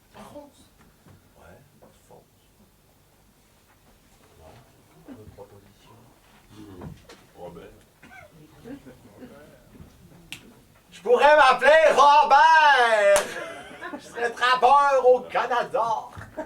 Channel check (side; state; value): both; identical; correlation 1.00